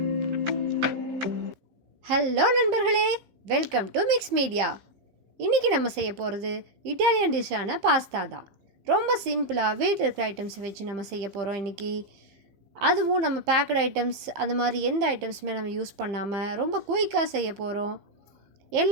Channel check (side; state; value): left; late; 15 ms